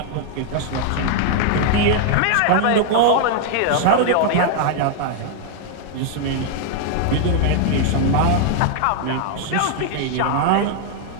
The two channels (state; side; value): different; both; correlation 0.00